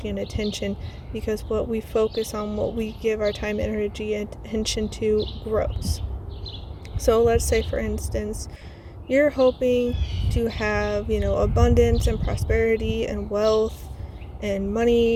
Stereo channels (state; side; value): identical; both; correlation 1.00